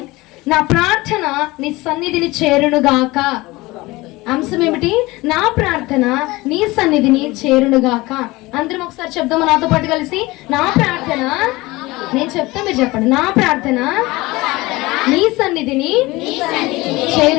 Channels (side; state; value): right; quieter; 21.0 dB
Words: నా ప్రార్థన నీ సన్నిధిని చేరునుగాక. అంశం ఏమిటి? నా ప్రార్థన నీ సన్నిధిని చేరునుగాక. అందరం ఒకసారి చెప్దాము నాతో పాటు కలిసి. నా ప్రార్థన, నేను చెప్తా మీరు చెప్పండి. నా ప్రార్థన నీ సన్నిధిని